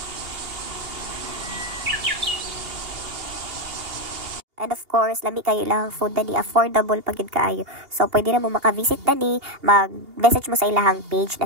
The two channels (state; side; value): late; left; 2.8 ms